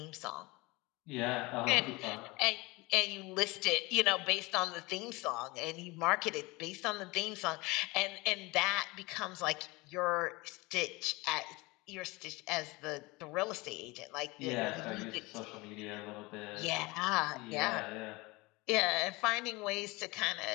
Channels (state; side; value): quieter; right; 23.5 dB